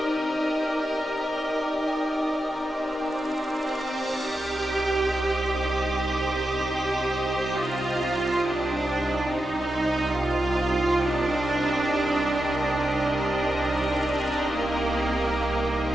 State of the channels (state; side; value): normal; both; correlation 0.88